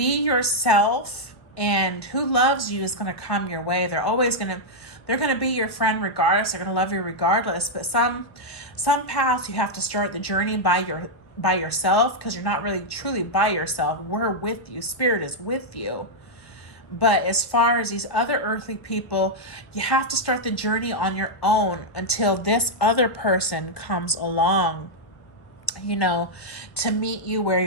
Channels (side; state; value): right; late; 1.4 ms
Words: yourself, and who loves you is going to come your way. They're going to be your friend regardless. They're going to love you regardless. But some paths you have to start the journey by yourself, because you're not really truly by yourself. We're with you. Spirit is with you. But as far as these other earthly people, you have to start the journey on your own until this other person comes along, to meet you where